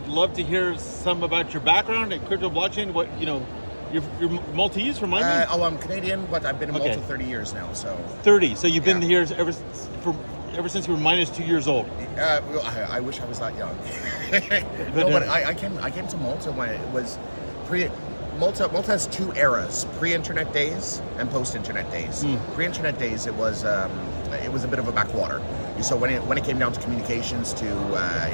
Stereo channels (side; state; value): both; inverted; correlation -1.00